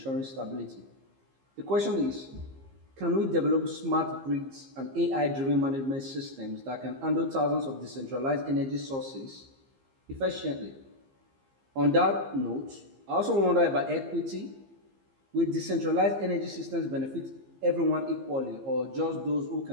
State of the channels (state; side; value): late; left; 15 ms